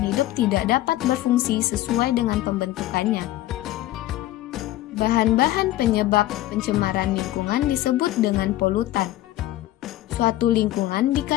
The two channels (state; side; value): quieter; right; 15.3 dB